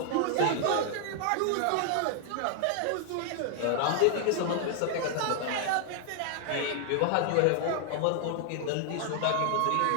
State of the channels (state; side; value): different; both; correlation 0.00